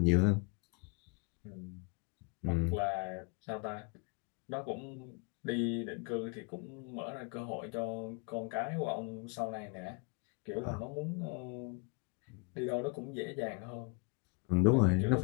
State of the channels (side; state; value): right; quieter; 33.4 dB